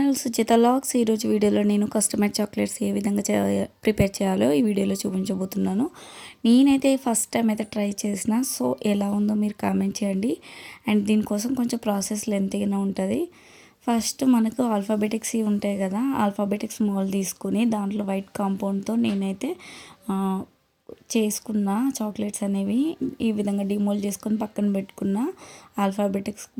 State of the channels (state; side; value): identical; both; correlation 1.00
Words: Suchitha logs. ఈరోజు వీడియోలో నేను కస్టమైజ్ చాక్లెట్స్ ఏ విధంగా ప్రిపేర్ చేయాలో ఈ వీడియోలో చూపించబోతున్నాను. నేనైతే ఫస్ట్ టైం అయితే ట్రై చేసిన. సో ఎలా ఉందో మీరు కామెంట్ చేయండి. అండ్ దీనికోసం కొంచెం ప్రాసెస్ లెంతీగానే ఉంటుంది. ఫస్ట్ మనకు ఆల్ఫాబెటిక్స్ ఉంటాయి కదా, ఆల్ఫాబెటిక్స్ మోల్ తీసుకుని దాంట్లో వైట్ కాంపౌండ్తో నేనైతే చేసుకున్న చాక్లెట్స్ అనేవి ఈ విధంగా డిమోల్డ్ చేసుకొని పక్కన పెట్టుకున్న. ఆల్ఫాబెటిక్స్